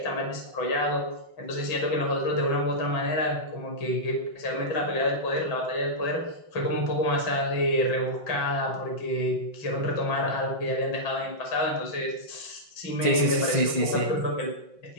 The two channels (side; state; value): right; late; 5.7 ms